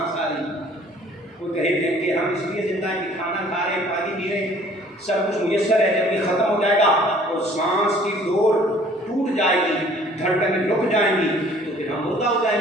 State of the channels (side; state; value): both; normal; correlation 0.55